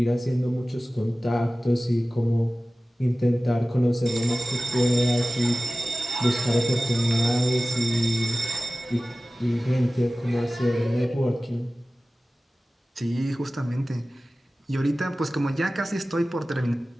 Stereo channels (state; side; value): normal; both; correlation 0.96